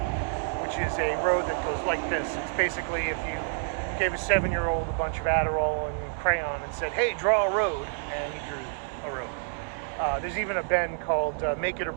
which is a road that goes like this. It's basically if you gave a 7-year-old a bunch of Adderall and crayon and said, hey, draw a road, and he drew a road. There's even a bend called Make It or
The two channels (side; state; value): left; silent; 59 dB below the other